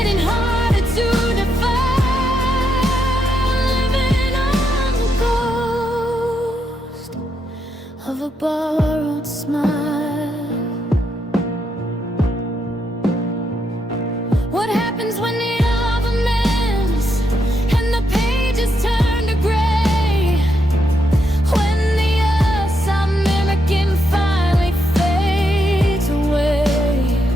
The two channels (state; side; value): normal; both; correlation 0.80